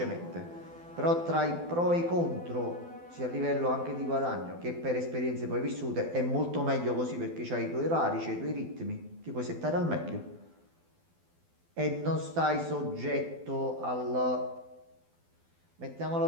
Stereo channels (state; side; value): late; left; 12 ms